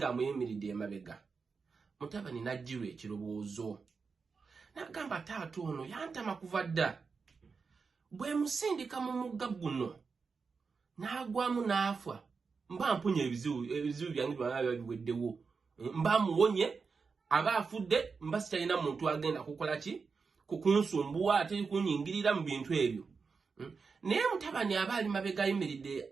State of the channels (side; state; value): left; quieter; 5.0 dB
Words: emabega. Mutabani n'ajjirwa ekirowoozo n'agamba taata ono yantama kuva dda. Bwe musindika mu mugga guno n'agwamu n'afa mba mpunye ebizibu byange byonna biweddewo. Mba muwonye aba afudde mba sitalina muntu agenda kukola ki kukunsumbuwa ate kunyingirira mu bintu ebyo. Naye mutabani aba ali mabega